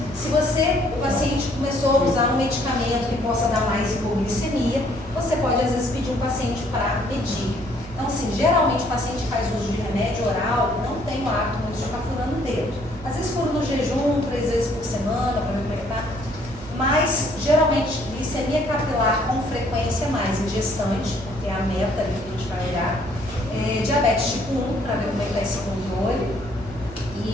se o paciente começou a usar um medicamento que possa dar mais hipoglicemia, você pode às vezes pedir um paciente para medir. Então, assim, geralmente o paciente que faz uso de remédio oral não tem o hábito muito de ficar furando o dedo. Às vezes fura no jejum, 3 vezes por semana, para ver como é que tá. Mas, geralmente, glicemia capilar com frequência mais em gestante, porque é a meta ali que a gente vai olhar. Diabetes tipo 1, para ver como é que está esse controle.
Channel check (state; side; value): noise; right; hum, 17 dB below the sound